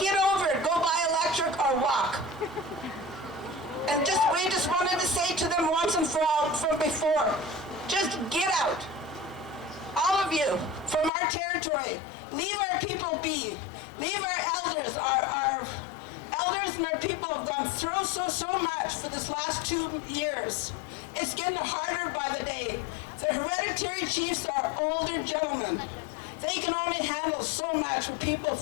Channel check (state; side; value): drops out; right; at 11.1 s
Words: over it. Go buy electric or walk. And we just wanted to say to them once and for all from before, just get out. All of you from our territory, leave our people be. Leave our elders. Our elders and our people have gone through so much for this last 2 years. It's getting harder by the day. The hereditary chiefs are older gentlemen. They can only handle so much with people